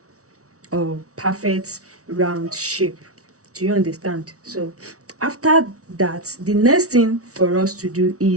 perfect round shape. Do you understand? So after that, the next thing for us to do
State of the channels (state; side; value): late; left; 0.65 ms